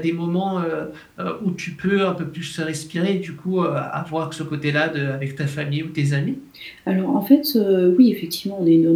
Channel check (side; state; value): both; identical; correlation 1.00